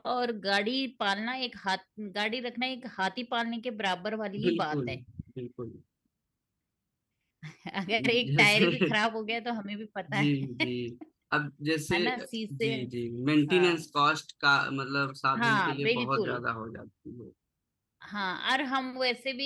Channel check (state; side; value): identical; both; correlation 1.00